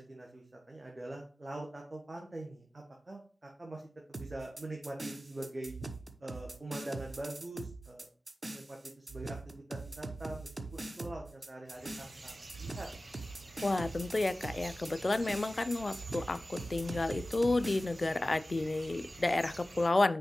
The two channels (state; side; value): normal; both; correlation 0.96